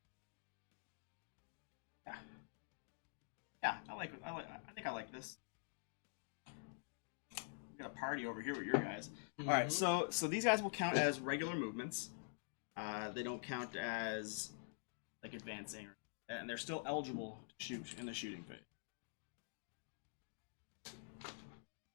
Yeah, I think I like this. We got a party over here with your guys. Mm-hmm. All right, so these guys will count as regular movements. They don't count as like advancing, and they're still eligible to shoot in the shooting phase.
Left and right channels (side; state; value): right; silent; digital silence